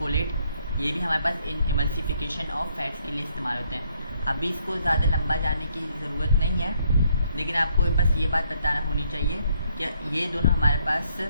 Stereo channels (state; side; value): inverted; both; correlation -0.69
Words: ये भी हमारे पास इमल्सिफिकेशन ऑफ फैट्स के लिए इस्तेमाल होते हैं। अभी इसको ज़्यादा लंबा जाने की ज़रूरत नहीं है, लेकिन आपको बस ये बात बताना होनी चाहिए कि ये दोनों हमारे पास,